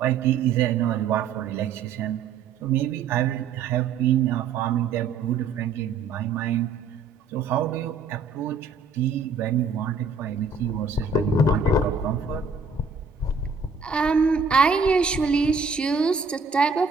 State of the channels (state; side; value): quieter; left; 4.8 dB